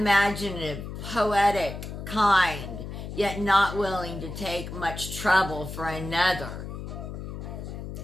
poetic, kind, yet not willing to take much trouble for another,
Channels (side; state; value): left; noise; hum, 8 dB below the sound